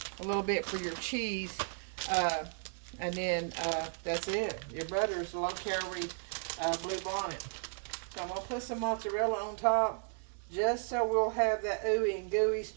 a little bit for your cheese. And then that's it. Your butter is low-calorie Blue Bonnet. So I'm going to put some mozzarella on top, just so we'll have that ooey and gooey,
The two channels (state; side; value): silent; left; digital silence